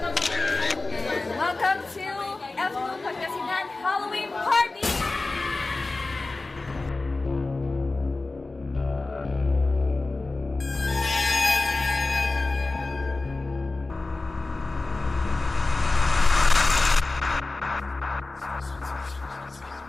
And welcome to F2 Pagkasinan Halloween Party!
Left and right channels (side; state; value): right; quieter; 3.3 dB